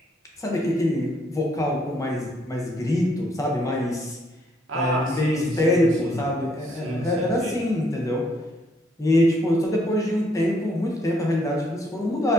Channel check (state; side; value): normal; both; correlation 0.70